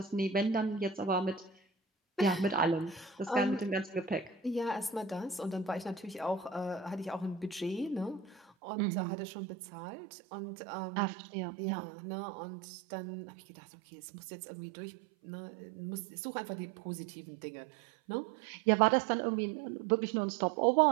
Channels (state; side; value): drops out; left; at 8.5 s